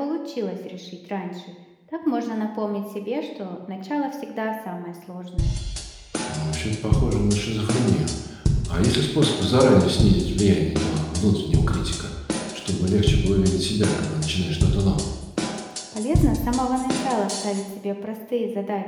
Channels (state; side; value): identical; both; correlation 1.00